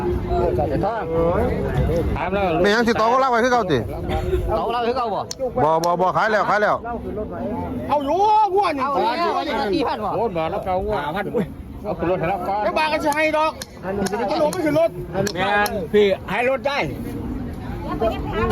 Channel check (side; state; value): both; identical; correlation 1.00